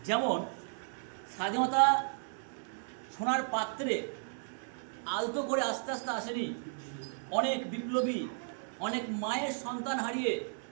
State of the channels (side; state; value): left; silent; digital silence